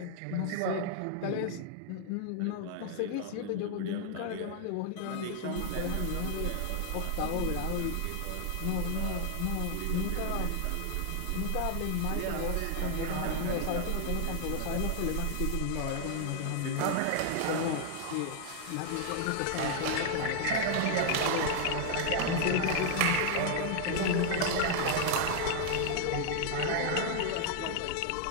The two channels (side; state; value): both; different; correlation 0.00